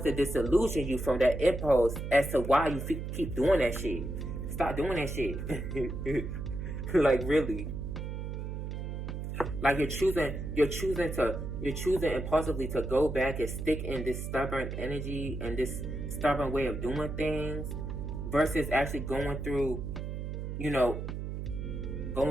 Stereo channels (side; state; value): right; noise; hum, 5 dB below the sound